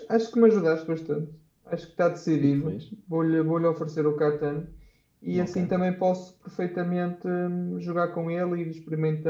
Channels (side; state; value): both; identical; correlation 1.00